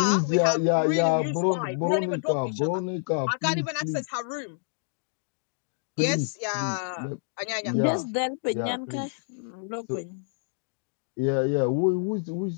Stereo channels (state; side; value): silent; right; digital silence